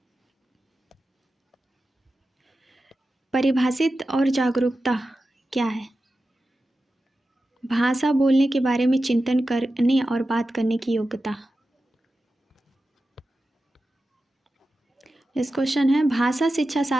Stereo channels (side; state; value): both; normal; correlation 0.93